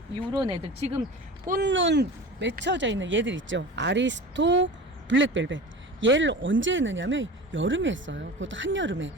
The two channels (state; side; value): normal; both; correlation 0.34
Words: 이런 애들, 지금 꽃눈 맺혀져 있는 얘들 있죠. 아리스토, 블랙벨벳. 얘를 언제 했느냐면 여름에 했어요. 그것도 한여름에.